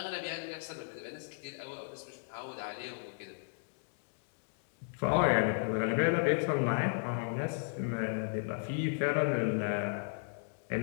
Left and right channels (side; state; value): right; silent; digital silence